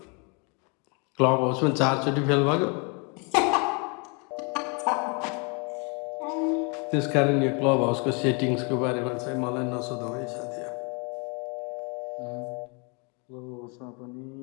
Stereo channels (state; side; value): quieter; right; 33.4 dB